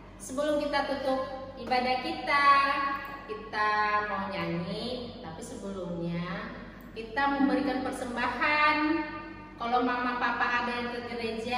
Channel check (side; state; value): both; identical; correlation 1.00